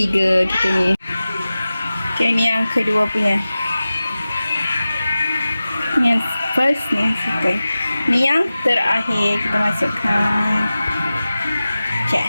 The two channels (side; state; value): both; inverted; correlation -0.95